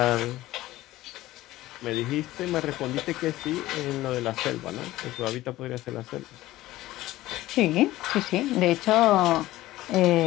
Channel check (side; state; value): right; quieter; 16.4 dB